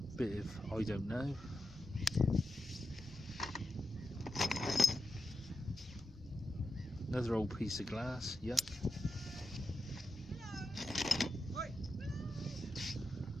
bit of I don't know. Another old piece of glass, yuck.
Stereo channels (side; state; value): both; normal; correlation 0.88